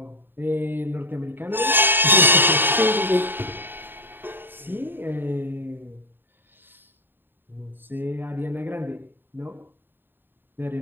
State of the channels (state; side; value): late; left; 0.096 ms